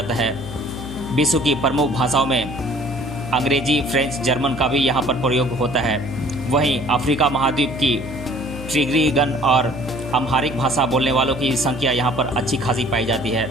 है। विश्व की प्रमुख भाषाओं में अंग्रेजी, फ्रेंच, जर्मन का भी यहाँ पर प्रयोग होता है। वहीं अफ्रीका महाद्वीप की ट्रिग्रिगन और अम्हारिक भाषा बोलने वालों की संख्या यहाँ पर अच्छी खासी पाई जाती है।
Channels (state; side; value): noise; left; hum, 10 dB below the sound